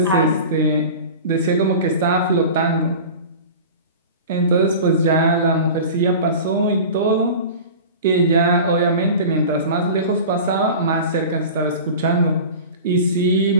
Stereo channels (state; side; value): inverted; both; correlation -0.35